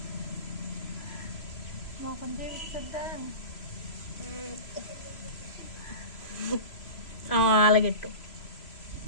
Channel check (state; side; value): late; right; 3.0 ms